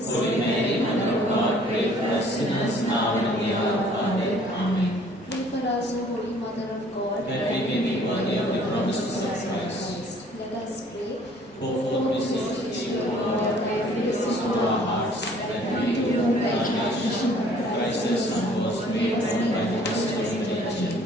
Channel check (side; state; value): both; normal; correlation 0.56